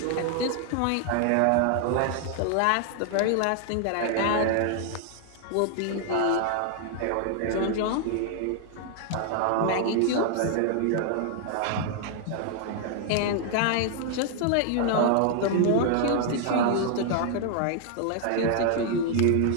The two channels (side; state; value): both; different; correlation 0.00